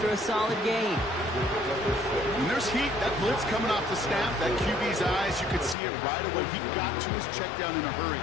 a solid gain. When there's heat, that blitz coming off the snap, that QB's eyes, you could see it right away. He got to his check down in a hurry.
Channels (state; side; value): drops out; right; at 5.8 s